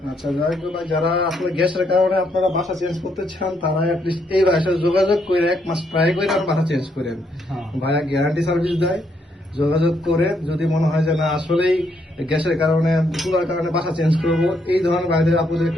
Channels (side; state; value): both; normal; correlation 0.74